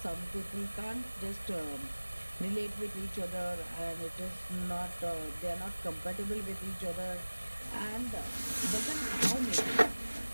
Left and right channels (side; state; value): both; inverted; correlation -1.00